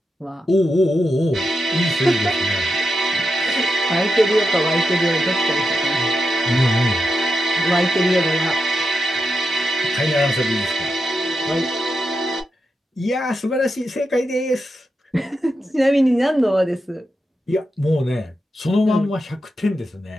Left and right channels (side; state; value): both; normal; correlation 0.87